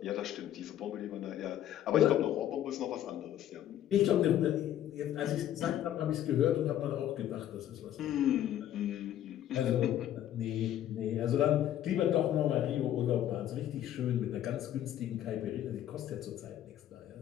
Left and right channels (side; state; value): right; quieter; 11.6 dB